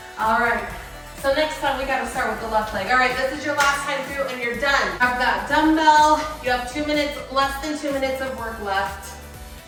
All right. So next time we gotta start with the left leg. All right, this is your last time through and you're done. Grab that dumbbell. You have 2 minutes, less than 2 minutes of work left.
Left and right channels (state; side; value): identical; both; correlation 1.00